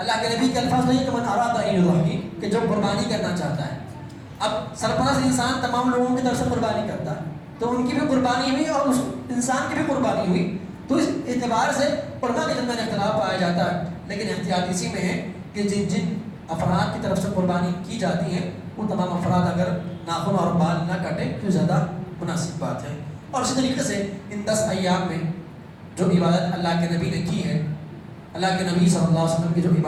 کے نبی کے الفاظ نہیں کہ من اراد ان یضحی، کہ جو قربانی کرنا چاہتا ہے۔ اب سرپرست انسان تمام لوگوں کی طرف سے قربانی کرتا ہے تو ان کی بھی قربانی ہوئی اور اس انسان کی بھی قربانی ہوئی، تو اس اعتبار سے علماء کے درمیان اختلاف پایا جاتا ہے۔ لیکن احتیاط اسی میں ہے کہ جن جن افراد کی طرف سے قربانی کی جاتی ہے وہ تمام افراد اگر ناخن اور بال نہ کاٹیں تو زیادہ مناسب بات ہے۔ اور اسی طریقے سے ان 10 ایام میں جو عبادت اللہ کے نبی نے کی ہے، اللہ کے نبی صلی اللہ علیہ وسلم کی جو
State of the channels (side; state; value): both; identical; correlation 1.00